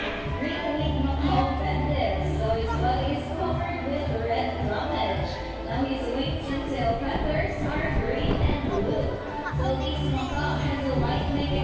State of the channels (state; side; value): identical; both; correlation 1.00